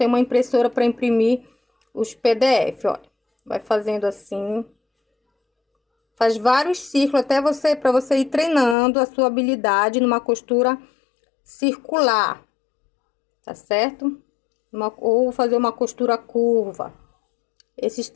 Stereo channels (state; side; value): drops out; right; at 8.8 s